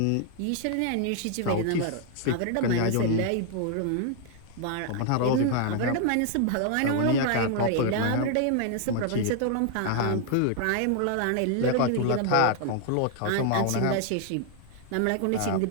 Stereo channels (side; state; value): both; different; correlation 0.00